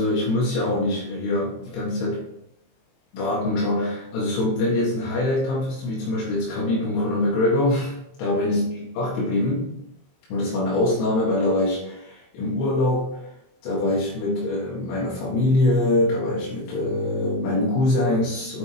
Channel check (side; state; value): right; late; 22 ms